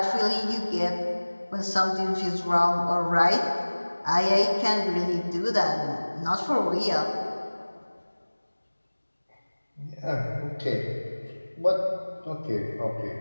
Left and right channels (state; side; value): inverted; both; correlation -1.00